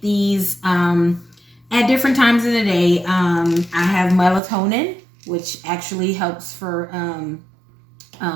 these at different times of the day. I have melatonin, which actually helps for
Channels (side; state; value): left; drops out; at 4.4 s